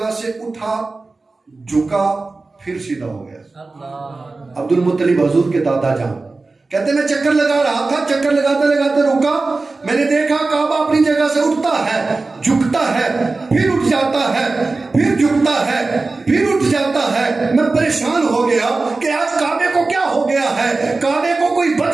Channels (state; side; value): quieter; left; 3.6 dB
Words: से उठा, झुका, फिर सीधा हो गया। अब्दुल मुत्तलिब हुजूर के दादा जान कहते मैं चक्कर लगा रहा था, चक्कर लगाते लगाते रुका, मैंने देखा काबा अपनी जगह से उठता है, झुकता है, फिर उठ जाता है, फिर झुकता है, फिर उठ जाता है। मैं परेशान हो गया कि आज काबे को क्या हो गया है, काबे को कोई